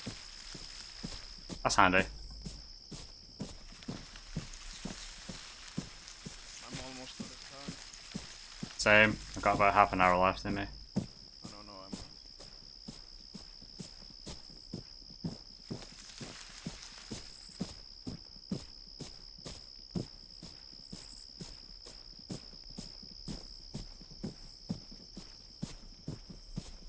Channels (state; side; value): identical; both; correlation 1.00